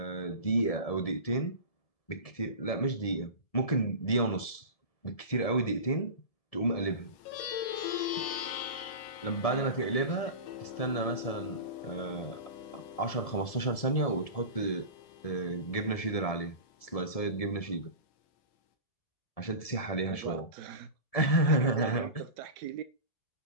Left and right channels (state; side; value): late; right; 1.7 ms